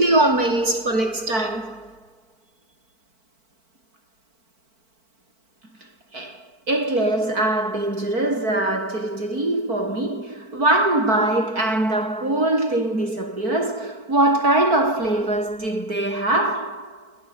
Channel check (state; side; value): late; left; 4.5 ms